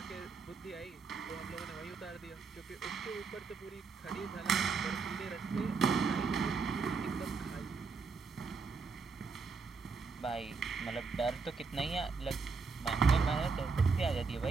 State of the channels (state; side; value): quieter; left; 4.7 dB